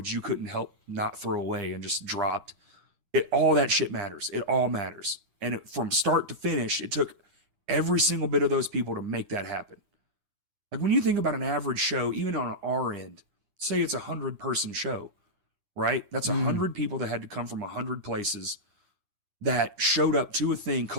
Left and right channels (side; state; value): left; late; 9.9 ms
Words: you couldn't help not throw away and just dropped. All that shit matters. It all matters. And from start to finish, it took every single bit of those people to make that happen. Like when you think about an average show, even on our end, say it's 100-person show, right? That's 100 people that had to come from 100 places that showed up to a thing